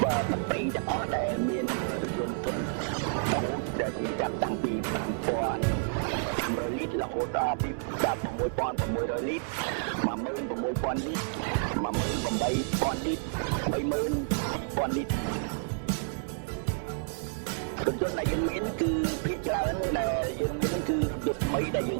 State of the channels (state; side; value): silent; left; 58 dB below the other